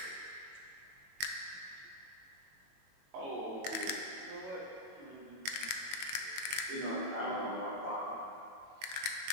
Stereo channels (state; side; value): late; left; 22 ms